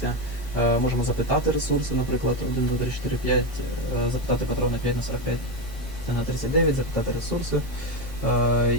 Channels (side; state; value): left; noise; hum, 16 dB below the sound